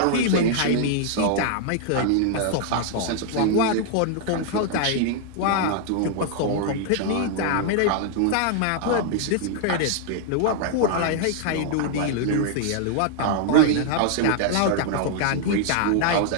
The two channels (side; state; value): both; different; correlation 0.00